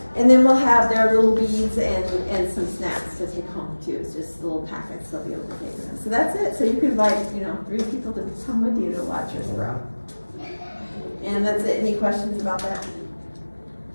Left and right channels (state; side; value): inverted; both; correlation -1.00